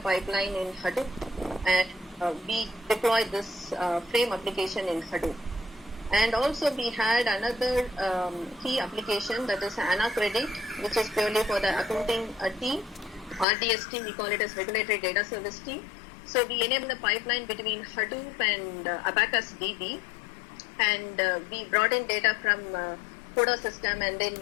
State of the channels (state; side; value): drops out; right; at 13.5 s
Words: pipeline in Hadoop, and we deployed this frame application in Hadoop. And also we had another key application, that is AnaCredit, which is purely for the accounting team. RDS team, we call it as Regulatory Data Service team. So we enable the pipeline between Hadoop and Abacus DB, and we brought in data from CODA system, and then